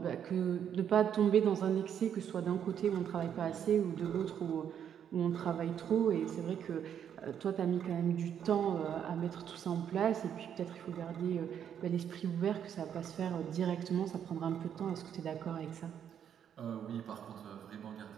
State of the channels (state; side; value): quieter; left; 8.9 dB